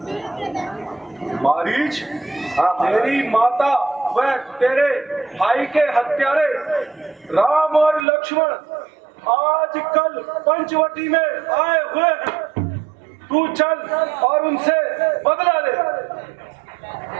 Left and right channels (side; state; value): left; drops out; at 8.1 s